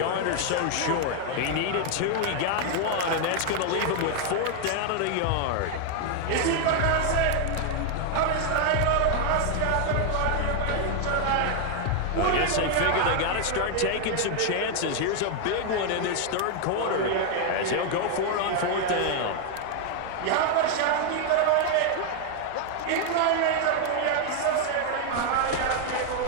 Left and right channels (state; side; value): different; both; correlation 0.00